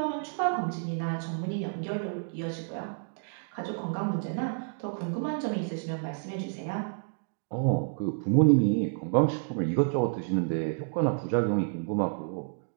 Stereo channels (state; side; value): silent; left; digital silence